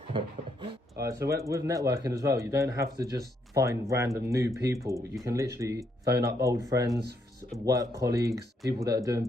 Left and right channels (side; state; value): both; normal; correlation 0.75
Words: Alright, so with networking as well, you don't have to just find random new people. You can literally phone up old friends, work colleagues, people that are doing